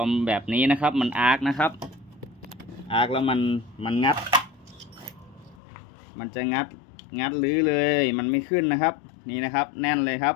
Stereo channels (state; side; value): drops out; right; at 5.6 s